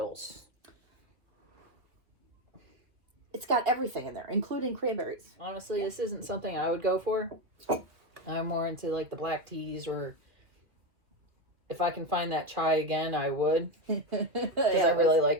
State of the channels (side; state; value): left; late; 2.4 ms